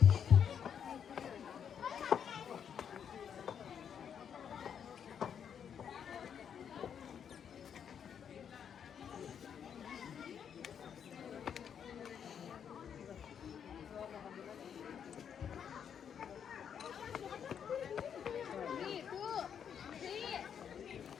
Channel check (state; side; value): quieter; right; 8.0 dB